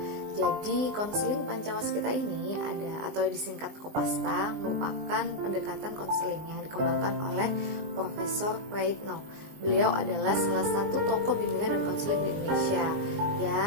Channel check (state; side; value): late; left; 20 ms